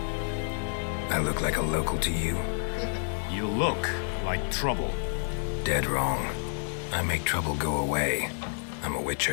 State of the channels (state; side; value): silent; right; digital silence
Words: I look like a local to you? You look like trouble. Dead wrong. I make trouble go away. I'm a